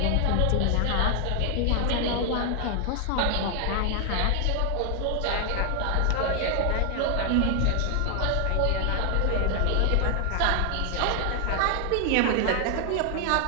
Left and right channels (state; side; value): different; both; correlation 0.00